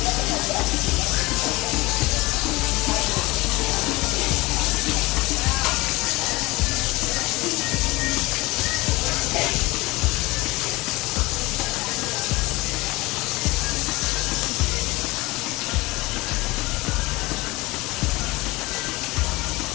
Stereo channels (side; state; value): right; quieter; 22.2 dB